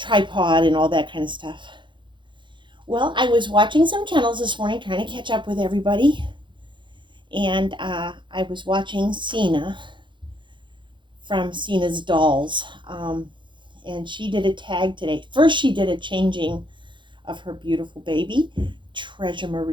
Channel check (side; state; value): left; late; 0.23 ms